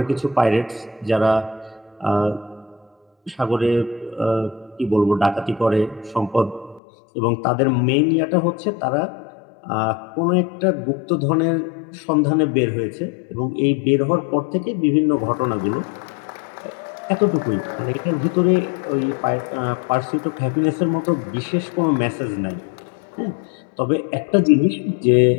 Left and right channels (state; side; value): drops out; right; at 6.8 s